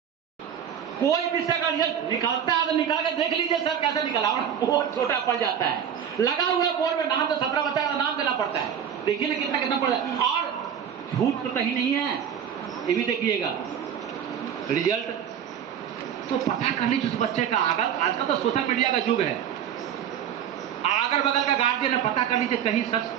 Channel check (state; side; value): quieter; left; 8.7 dB